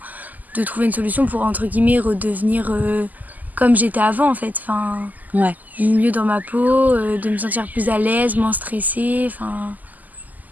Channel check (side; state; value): left; late; 0.081 ms